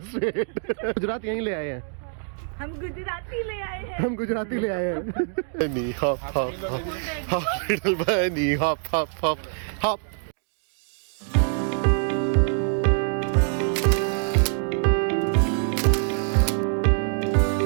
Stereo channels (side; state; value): left; silent; 59 dB below the other